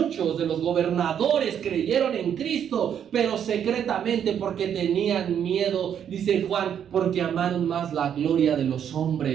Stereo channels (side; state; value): left; quieter; 8.8 dB